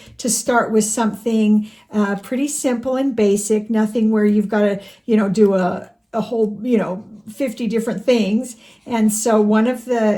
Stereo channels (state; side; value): identical; both; correlation 1.00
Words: start with something pretty simple and basic, nothing where you've got to, do a whole, 50 different things. And so one of